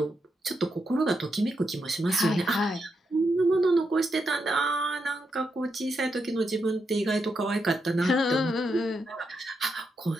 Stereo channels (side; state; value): both; normal; correlation 0.83